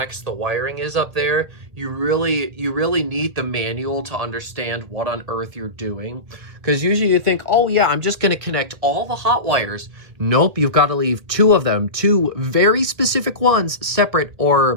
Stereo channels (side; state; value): left; late; 1.9 ms